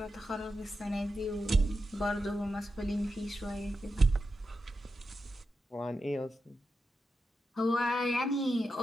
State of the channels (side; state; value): both; normal; correlation 0.89